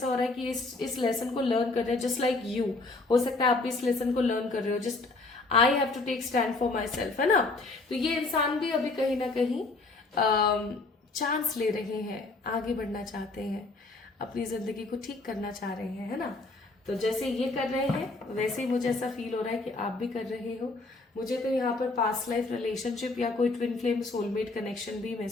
हो रहा है कि इस लेसन को लर्न कर रहे हैं, जस्ट लाइक यू। हो सकता है आप भी इस लेसन को लर्न कर रहे हो, just I have to take stand for myself, है ना। तो ये इंसान भी अभी कहीं ना कहीं चांस ले रहे हैं, आगे बढ़ना चाहते हैं, अपनी जिंदगी को ठीक करना चाह रहे हैं, है ना। तो जैसे ये कर रहे हैं वैसे ही मुझे ऐसा फील हो रहा है कि आप भी कर रहे हो। मुझे तो यहाँ पर पास्ट लाइफ रिलेशनशिप या कोई ट्विन फ्लेम सोलमेट कनेक्शन भी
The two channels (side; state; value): right; quieter; 3.4 dB